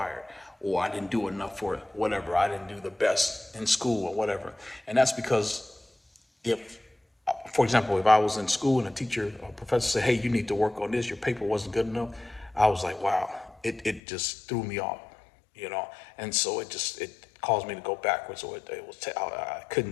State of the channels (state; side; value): drops out; right; at 14.0 s